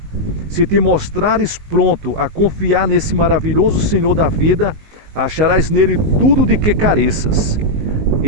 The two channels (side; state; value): left; late; 19 ms